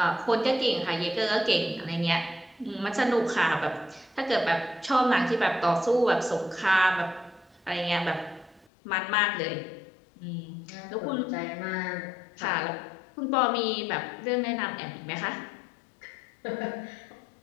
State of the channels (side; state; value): right; drops out; at 8.7 s